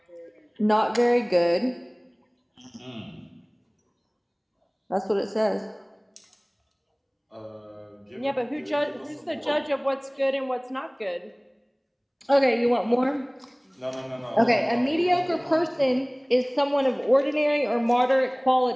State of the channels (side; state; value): both; identical; correlation 1.00